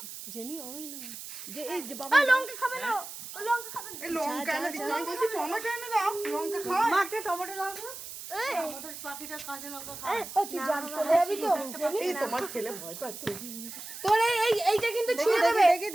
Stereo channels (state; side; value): noise; right; hiss, 11 dB below the sound